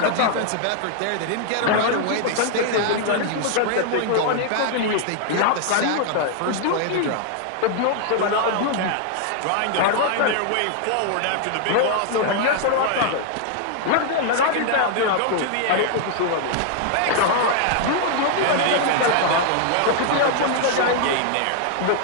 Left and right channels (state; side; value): different; both; correlation 0.00